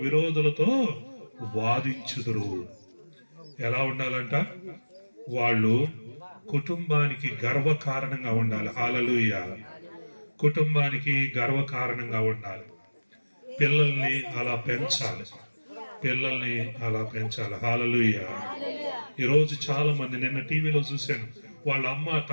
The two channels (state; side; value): inverted; both; correlation -1.00